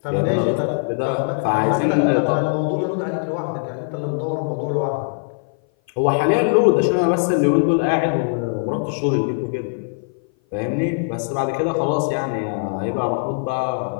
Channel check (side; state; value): right; silent; 58 dB below the other